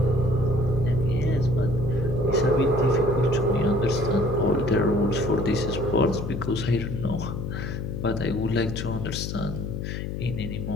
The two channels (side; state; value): left; noise; hum, 5 dB below the sound